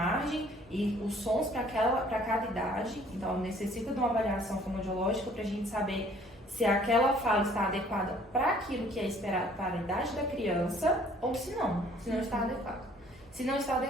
e os sons para cada idade, então necessita de uma avaliação fonoaudiológica para a gente saber se aquela fala está adequada para aquilo que é esperado para a idade da criança ou se não está adequado. Se não está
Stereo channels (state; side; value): normal; both; correlation 0.57